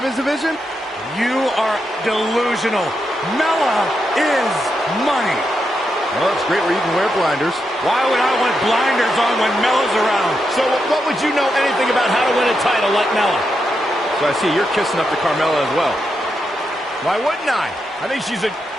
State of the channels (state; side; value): normal; both; correlation 0.84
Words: division? You are delusional. Mella is money. Well, it's great where you can wear blinders. Why would I want blinders on when Mella's around? So what would you know anything about how to win a title like Mella? So I see you're kissing up to Carmella as well. Why wouldn't I? I think she's an